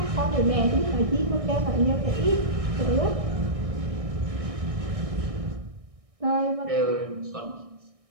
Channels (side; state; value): left; late; 1.6 ms